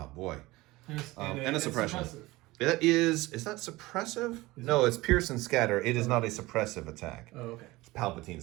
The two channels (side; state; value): left; quieter; 20.1 dB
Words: Boy. And a suppression. It is that suppressive? No, it's Pierce and Scatter. It is not a suppressive attack. Oh, okay. It's